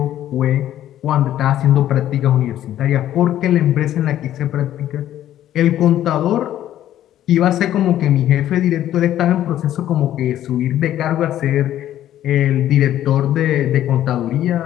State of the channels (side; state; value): right; quieter; 12.2 dB